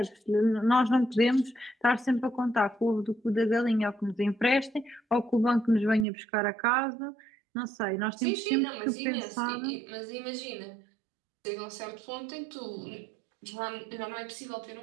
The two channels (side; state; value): left; drops out; at 6.1 s